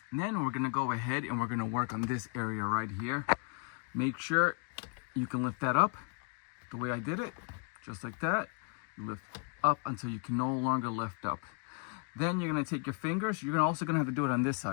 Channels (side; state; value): right; quieter; 35.8 dB